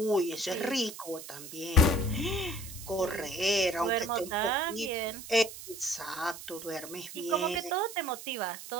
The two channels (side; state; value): right; noise; hiss, 12 dB below the sound